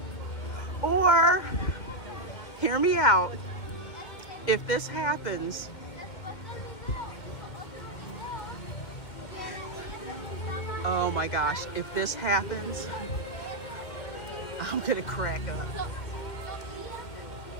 Or, hear me out, if this happens, oh my gosh, if this happens, I'm gonna crack up.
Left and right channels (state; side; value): late; right; 2.2 ms